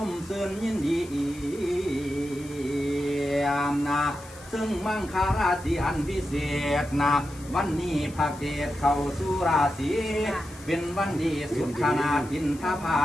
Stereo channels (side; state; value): left; noise; hiss, 20 dB below the sound